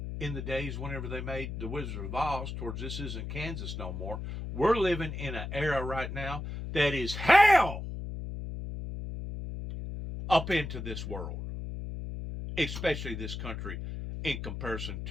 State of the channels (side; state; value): left; noise; hum, 6 dB below the sound